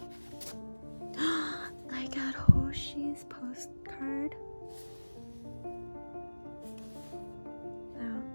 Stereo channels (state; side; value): inverted; both; correlation -1.00